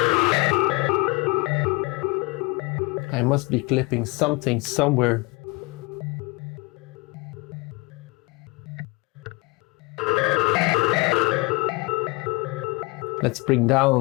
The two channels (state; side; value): quieter; right; 25.8 dB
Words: I must be clipping something somewhere. Let's bring